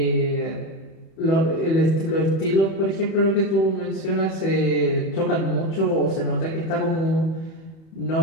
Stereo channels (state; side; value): late; right; 31 ms